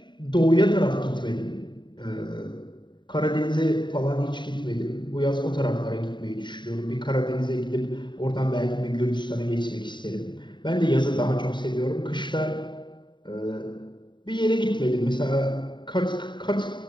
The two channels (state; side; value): late; right; 0.23 ms